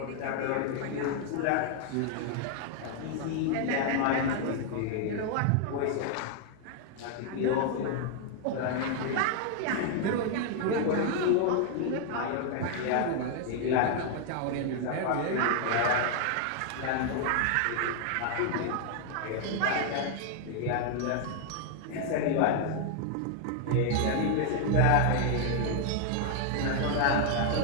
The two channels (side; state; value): both; different; correlation 0.00